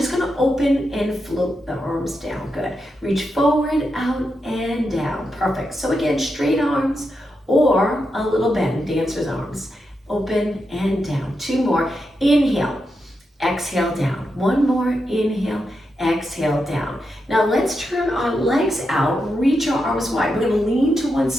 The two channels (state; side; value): normal; both; correlation 0.86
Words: going to open and float the arms down. Good. Reach forward, out, and down. Perfect. So again, straight arms or a little bend, dancer's arms. Open and down. Two more. Inhale, exhale, down. One more. Inhale, exhale, down. Now let's turn our legs out. Reach our arms wide. We're going to lean to one